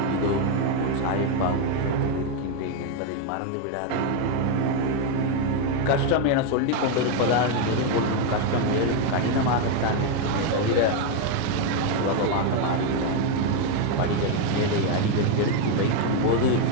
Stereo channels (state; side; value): different; both; correlation 0.01